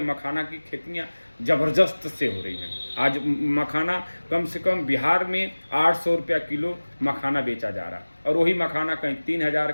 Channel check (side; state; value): both; inverted; correlation -1.00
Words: मखाना की खेतियां जबरदस्त से हो रही हैं। आज मखाना कम से कम बिहार में 800 रुपया किलो मखाना बेचा जा रहा है, और वही मखाना कहीं 3000,